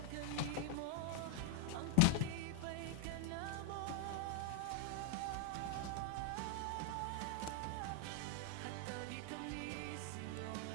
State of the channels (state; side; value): different; both; correlation 0.01